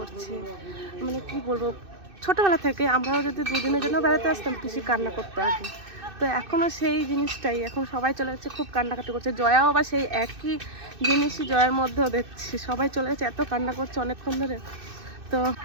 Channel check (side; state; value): left; late; 2.6 ms